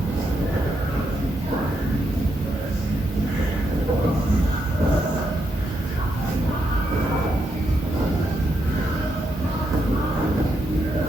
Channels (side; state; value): both; normal; correlation 0.81